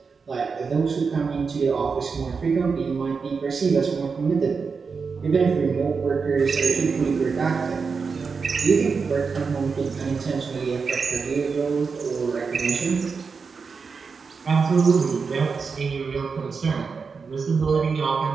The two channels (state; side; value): quieter; left; 5.2 dB